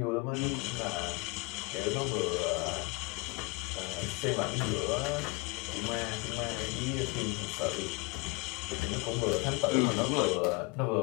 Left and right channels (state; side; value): quieter; right; 26.9 dB